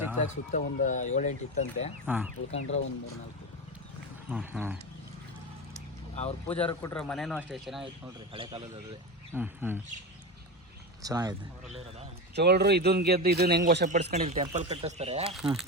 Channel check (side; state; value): both; normal; correlation 0.20